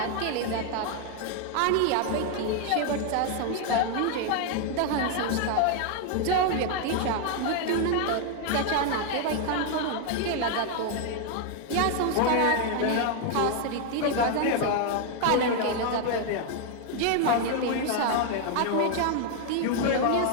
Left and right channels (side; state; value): both; different; correlation 0.00